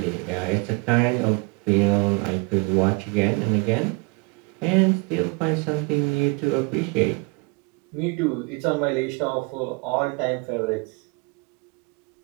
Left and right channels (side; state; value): left; quieter; 29.5 dB